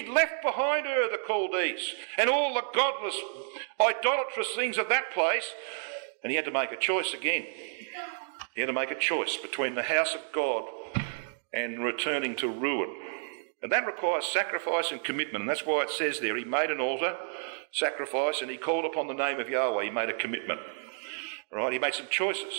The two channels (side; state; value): left; silent; digital silence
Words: left behind her the Chaldees and all the godless, idolatrous things of that place, and he had to make a choice again. He had to make a choice between the house of God and returning to ruin. And that requires sacrifice and commitment, and that's why it says there, he made an altar, sacrifice, and he called upon the name of Yahweh. He made a commitment. Right? He made some